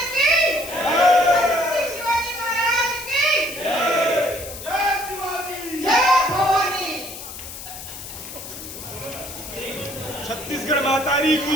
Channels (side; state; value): left; noise; hiss, 11 dB below the sound